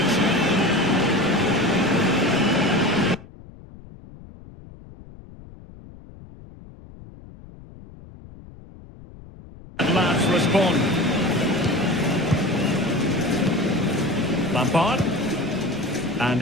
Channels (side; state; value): left; noise; rumble, 19 dB below the sound